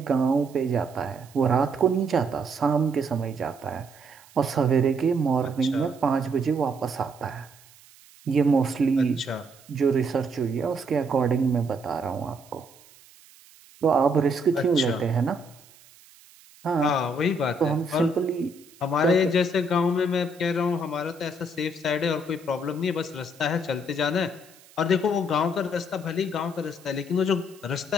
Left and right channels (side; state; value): right; noise; hiss, 25 dB below the sound